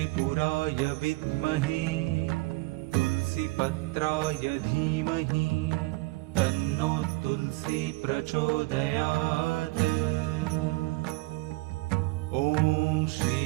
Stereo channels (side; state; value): left; quieter; 22.9 dB